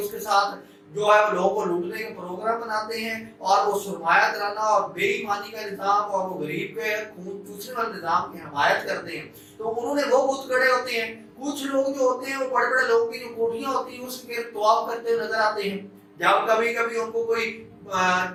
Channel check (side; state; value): both; identical; correlation 1.00